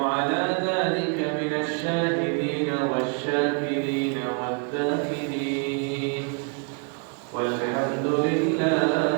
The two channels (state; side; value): quieter; left; 37.1 dB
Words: على ذلك من الشاهدين والشاكرين والذاكرين والحمد